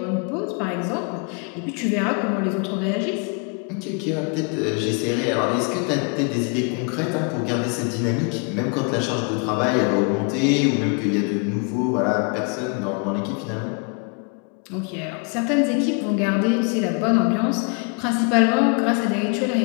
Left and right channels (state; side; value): quieter; right; 34.8 dB